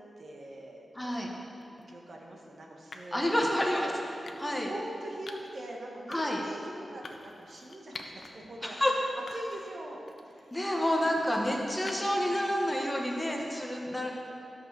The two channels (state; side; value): normal; both; correlation 0.94